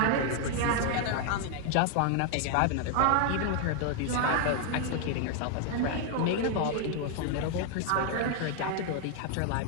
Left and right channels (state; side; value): different; both; correlation 0.00